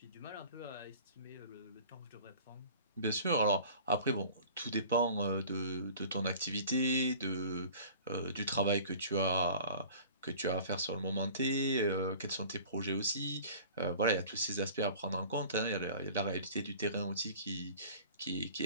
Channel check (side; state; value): both; inverted; correlation -0.45